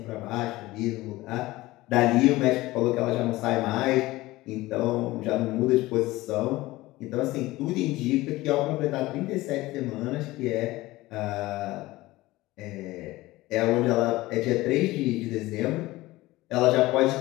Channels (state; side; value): quieter; right; 18.7 dB